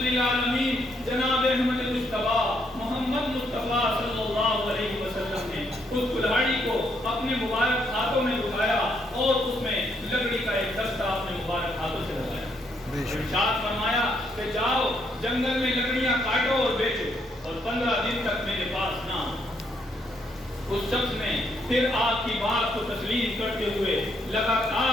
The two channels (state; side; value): normal; both; correlation 0.74